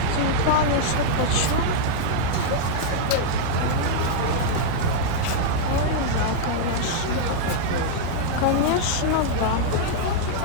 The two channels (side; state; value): both; different; correlation -0.01